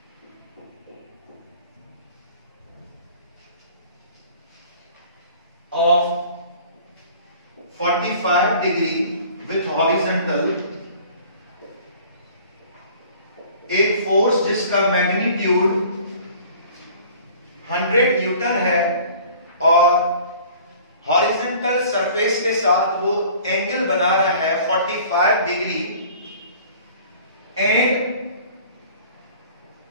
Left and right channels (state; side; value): inverted; both; correlation -0.49